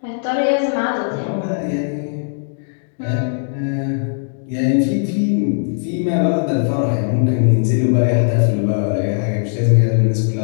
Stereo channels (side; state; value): right; silent; digital silence